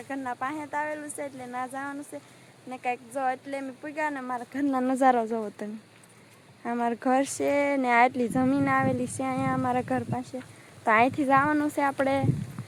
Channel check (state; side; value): identical; both; correlation 1.00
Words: ઘરના પાસે આવેલું છે એટલે ના જવાનું છે ને કંઈક જો એટલે અમે પૂગ્યા ને મારા ઘરના નજારો જોવો તમે. અમારું ઘર છે ને આટલી જમીન આવેલી છે અહીંયા અમારા ઘર પાસે. તો અહીંથી જવાનું છે આપણે